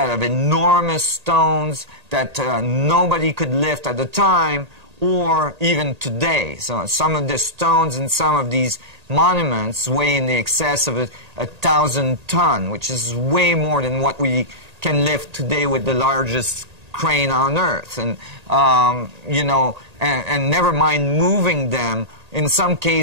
of enormous stones that nobody could lift at the time or even today. So some of the stones and some of these monuments weigh in the excess of 1,000 tons, which is way more than what we can lift today with the largest crane on earth. And, you know, and never mind moving them, in some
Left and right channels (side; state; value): left; late; 1.8 ms